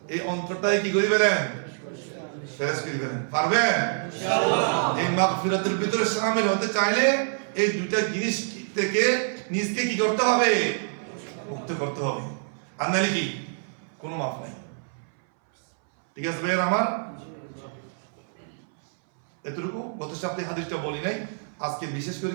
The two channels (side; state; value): left; silent; 61 dB below the other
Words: এই অন্তরটাই কি করে ফেলেন? ফেরেশ করে ফেলেন। পারবেন ইনশাআল্লাহ? এই মাগফিরাতের ভিতরে শামিল হতে চাইলে এই দুইটা জিনিস থেকে নিজকে কি করতে হবে? মুক্ত করতে হবে। আর নাহলে কি কোনো মাফ নাই। ঠিক আছে ভাইয়া আমার? এতটুকু গত সপ্তাহে হাদিসটা বলি নাই, আজকে বিশেষ করে